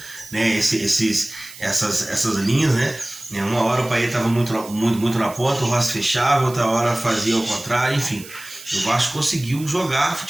essas linhas. Uma hora o Payet estava muito na ponta, o Rossi fechava, outra hora fazia ao contrário, enfim. o Vasco conseguiu jogar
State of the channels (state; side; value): noise; right; hiss, 17 dB below the sound